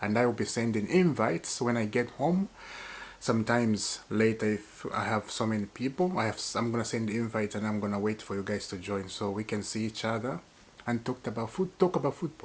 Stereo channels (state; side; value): identical; both; correlation 1.00